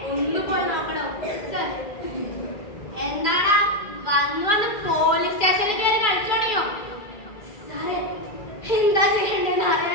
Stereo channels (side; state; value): right; late; 2.4 ms